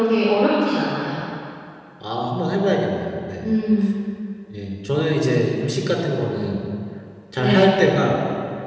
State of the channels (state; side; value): identical; both; correlation 1.00